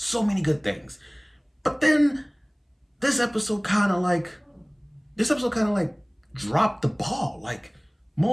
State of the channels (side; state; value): both; identical; correlation 1.00